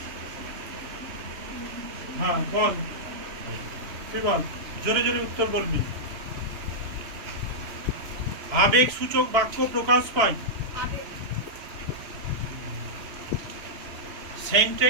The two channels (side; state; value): left; late; 2.9 ms